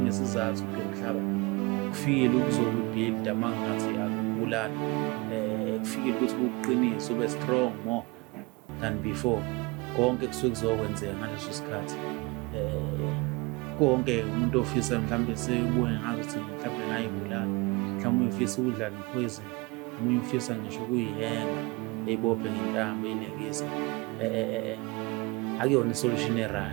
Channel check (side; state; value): left; quieter; 25.6 dB